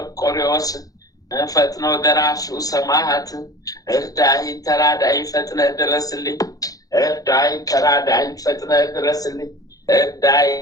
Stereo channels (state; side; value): late; right; 0.17 ms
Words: ፈጥኖ ደራሹ ሰማዕት እርዳኝ ተራዳኝ ፈጥነ ድረስልኝ። እርዳኝ ተራዳኝ ፈጥነ ድረስልኝ። እርዳኝ